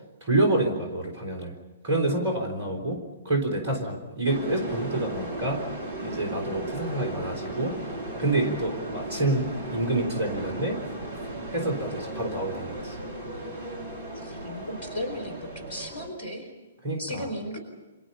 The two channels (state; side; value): inverted; both; correlation -0.42